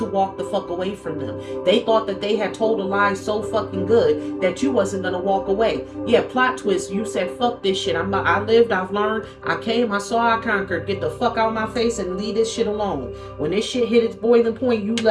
walk the fuck away from them. They thought that they had told a lie so fucking good that you wasn't gonna walk away. Yeah, plot twist. You said, fuck this shit. I lived, I've learned, I came, I saw, I conquered. Get the fuck out of my face and leave this shit alone. When this shit hit its boiling point, you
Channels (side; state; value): both; identical; correlation 1.00